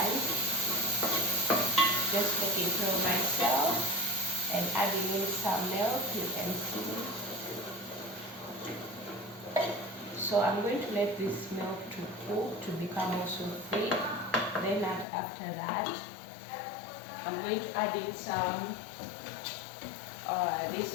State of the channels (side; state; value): right; drops out; at 15.1 s